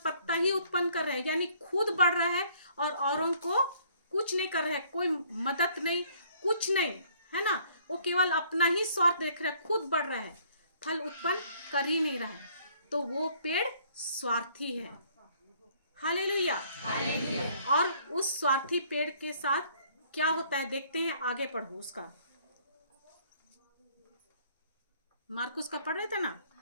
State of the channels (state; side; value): inverted; both; correlation -0.61